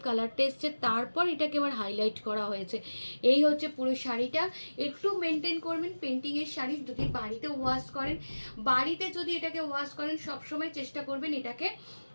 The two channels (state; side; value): inverted; both; correlation -1.00